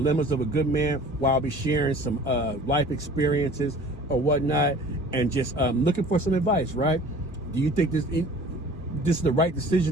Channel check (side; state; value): both; normal; correlation 0.46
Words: of a good man while I'll be sharing some life experiences or whatnot, and just looking for some advice, right? Do you think this is the right